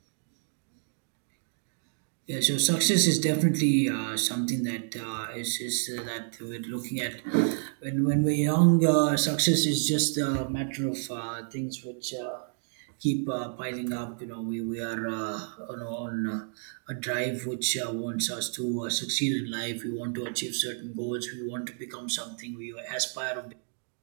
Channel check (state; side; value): silent; left; 58 dB below the other